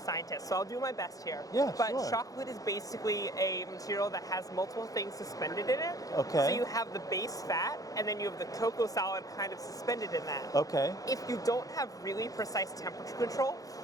so I'll do my best here. Yeah, but sure. chocolate is basically a material that has multiple things suspended in it. Okay. So you have the base fat, and then you have the cocoa solid kind of suspended in that. Okay. If you don't have really precise temperature control,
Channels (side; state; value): right; late; 0.17 ms